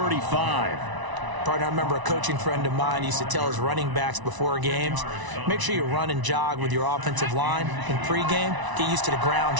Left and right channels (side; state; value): left; late; 1.0 ms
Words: Partner, I remember a coaching friend of mine used to tell his running backs before games, make sure you run and jog with your offensive line in pregame. Get used to the ground